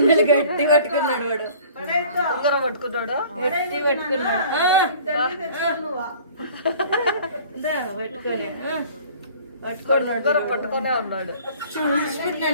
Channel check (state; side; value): inverted; both; correlation -0.49